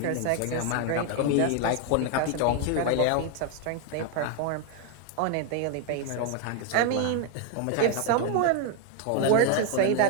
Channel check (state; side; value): different; both; correlation 0.00